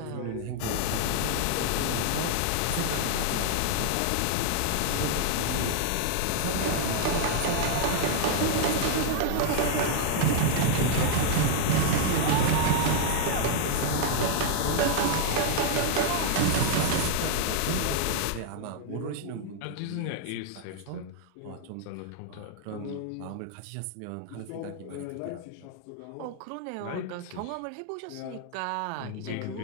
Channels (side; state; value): both; different; correlation 0.00